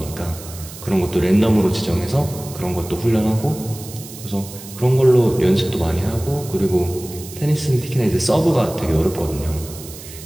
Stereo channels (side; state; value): right; noise; hiss, 15 dB below the sound